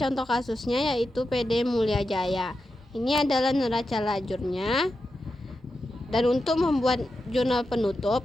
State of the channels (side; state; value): both; normal; correlation 0.89